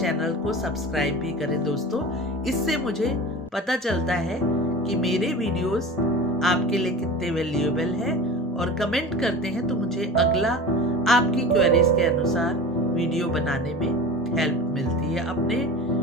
को सब्सक्राइब भी करें दोस्तों। इससे मुझे पता चलता है कि मेरे वीडियोस आपके लिए कितने वैल्यूएबल है, और कमेंट करते हैं तो मुझे अगला आपकी क्वेरीज के अनुसार वीडियो बनाने में हेल्प मिलती है। अपने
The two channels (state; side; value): normal; both; correlation 0.33